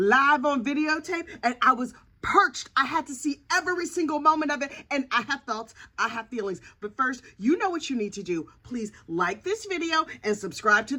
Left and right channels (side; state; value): both; identical; correlation 1.00